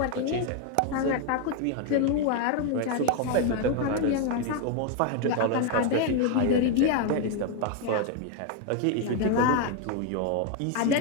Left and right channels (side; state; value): both; different; correlation 0.01